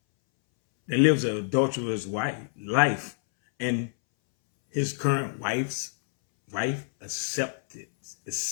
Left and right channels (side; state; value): right; silent; 60 dB below the other